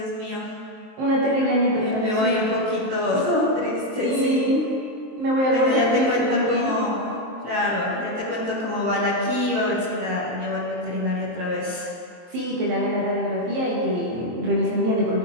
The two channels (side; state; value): left; late; 23 ms